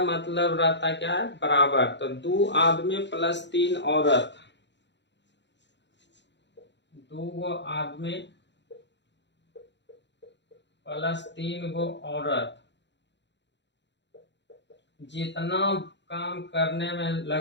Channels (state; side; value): late; right; 0.52 ms